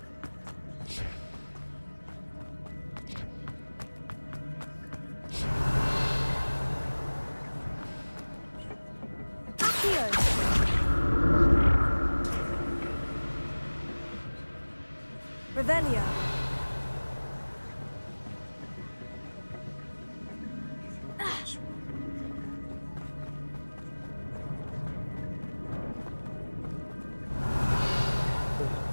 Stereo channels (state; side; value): inverted; both; correlation -1.00